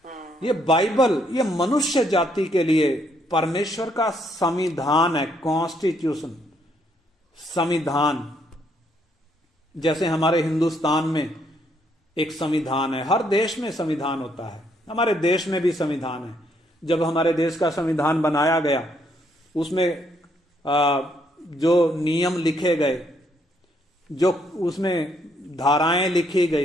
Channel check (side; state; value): both; normal; correlation 0.72